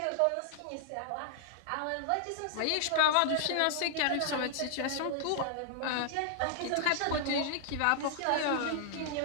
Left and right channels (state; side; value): different; both; correlation -0.01